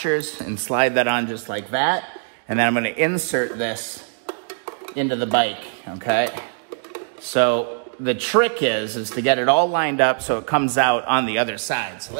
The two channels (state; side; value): silent; left; digital silence